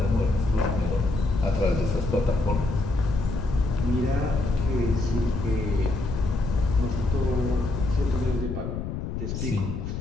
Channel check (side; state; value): left; noise; rumble, 5 dB below the sound